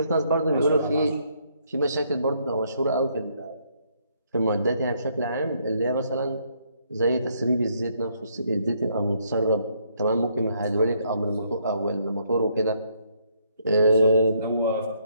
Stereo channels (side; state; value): both; inverted; correlation -0.71